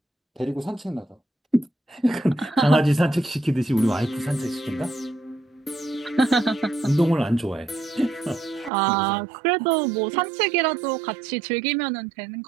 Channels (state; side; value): drops out; left; at 8.7 s